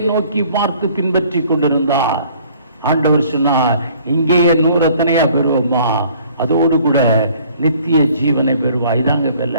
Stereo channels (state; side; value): inverted; both; correlation -0.56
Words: நோக்கி பார்த்து பின்பற்றி கொண்டிருந்தார். ஆண்டவர் சொன்னார், இங்கேயே 100 எத்தனையா பெறுவோமா, அதோடு கூட நித்திய ஜீவனை பெறுவா. இதாங்க வெல்ல,